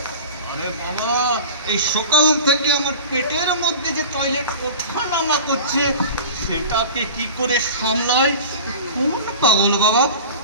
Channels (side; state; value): both; inverted; correlation -0.36